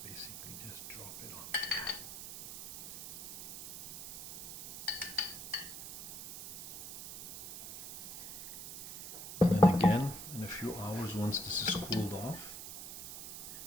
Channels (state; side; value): noise; right; hiss, 11 dB below the sound